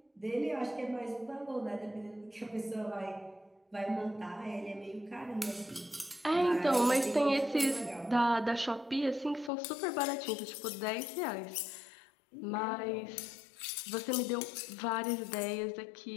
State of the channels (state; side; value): drops out; right; at 9.5 s